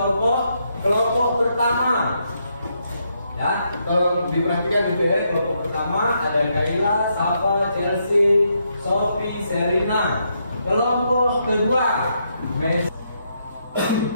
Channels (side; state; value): both; inverted; correlation -0.78